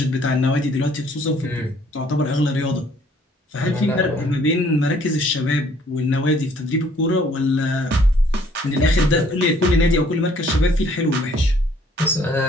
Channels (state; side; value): normal; both; correlation 0.61